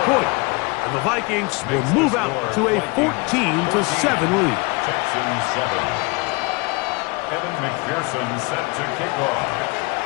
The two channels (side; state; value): right; quieter; 27.5 dB